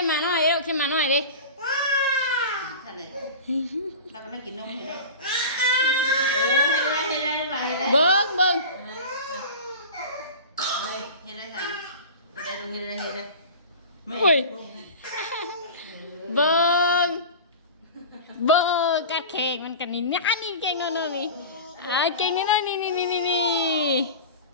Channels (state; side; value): inverted; both; correlation -0.33